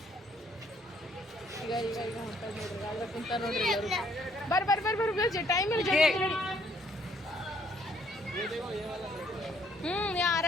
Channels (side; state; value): both; normal; correlation 0.65